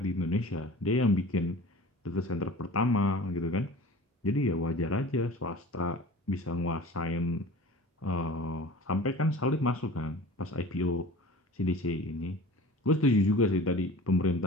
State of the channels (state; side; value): normal; both; correlation 0.40